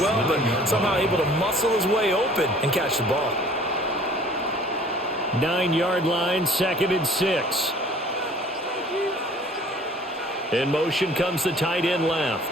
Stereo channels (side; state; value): both; normal; correlation 0.51